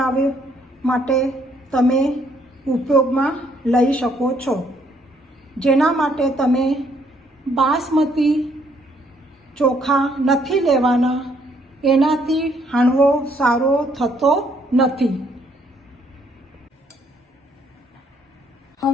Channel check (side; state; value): both; normal; correlation 0.68